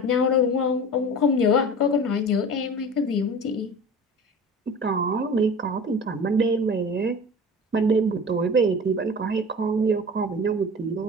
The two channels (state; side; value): normal; both; correlation 0.36